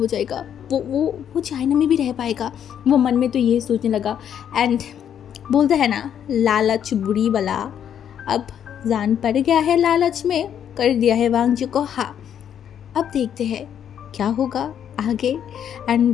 जाएगा, वो चाइना में भी रह पाएगा। वो मन में तो ये सोचने लगा एंड बोलते हैं ना लालच बुरी बला, अब जान पड़ गया है लालच में, कर दिया है वांग जी को। हाँ, अब देखते हैं क्या होगा आगे।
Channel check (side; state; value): right; quieter; 9.2 dB